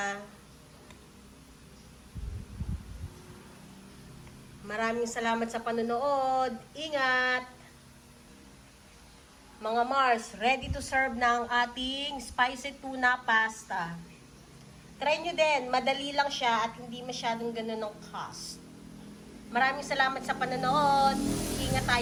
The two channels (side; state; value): both; identical; correlation 1.00